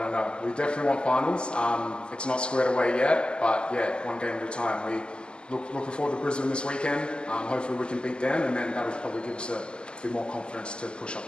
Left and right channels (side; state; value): right; late; 0.049 ms